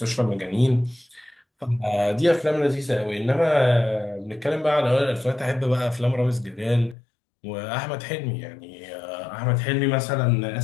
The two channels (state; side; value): drops out; right; at 7.0 s